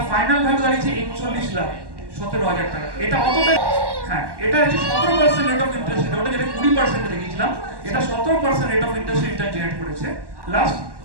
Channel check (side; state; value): left; late; 1.1 ms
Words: ফাইনাল ভ্যালু দাঁড়িয়েছে 41,17,000 টাকা। এটা অতটা, হ্যাঁ এটা হচ্ছে 17% রেট অফ ইন্টারেস্ট, ওটা যেটা 20% দেখেছিলাম, এটা 17% rate of interest return generate করেছে। লাস্ট